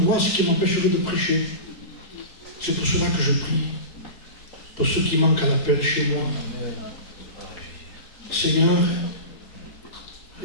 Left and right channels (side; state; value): right; late; 4.7 ms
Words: qui m'empêcherait de prêcher. C'est pour cela que je prie. Pour ceux qui manquent à l'appel chez moi. Seigneur,